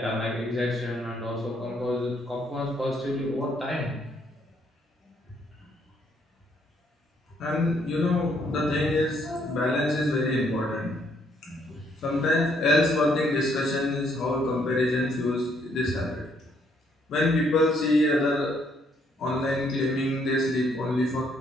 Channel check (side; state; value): both; normal; correlation 0.70